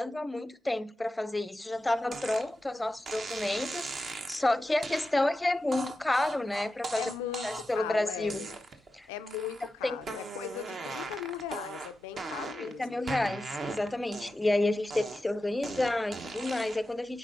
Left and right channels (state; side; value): normal; both; correlation 0.92